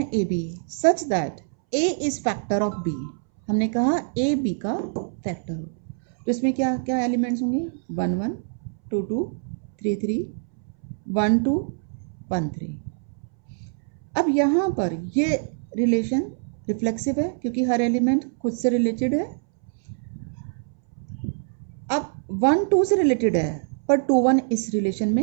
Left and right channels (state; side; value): silent; left; 62 dB below the other